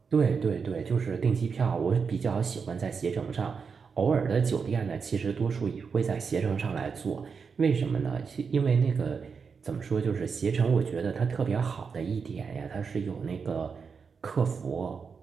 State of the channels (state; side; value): quieter; left; 5.7 dB